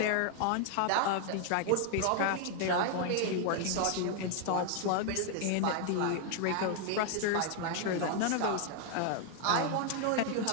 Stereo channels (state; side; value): different; both; correlation 0.00